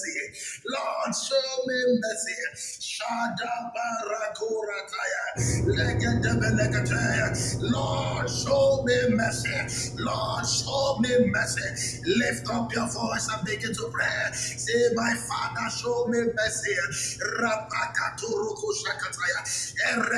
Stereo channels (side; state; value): both; identical; correlation 1.00